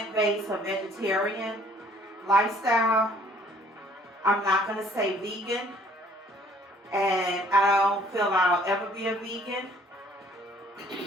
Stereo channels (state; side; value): normal; both; correlation 0.58